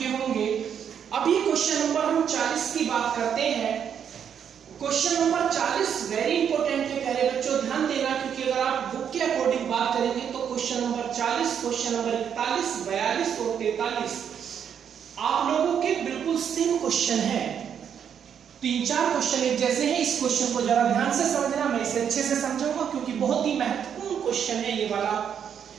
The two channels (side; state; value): left; quieter; 8.2 dB